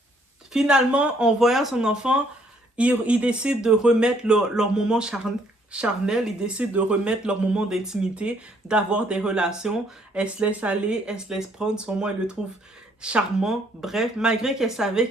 finalement, en voyant son enfant, il décide de remettre leur moment charnel, ils décident de remettre leur moment d'intimité, d'avoir des relations. Elle se laisse aller, elle se laisse prendre. Sur moi, elle le trouve charmant. Bref, malgré qu'elle savait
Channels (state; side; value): normal; both; correlation 0.66